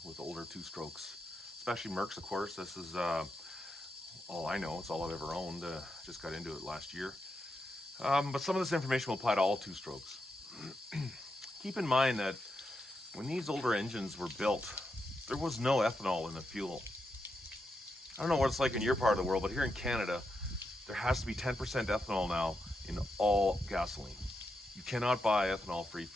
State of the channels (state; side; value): normal; both; correlation 0.85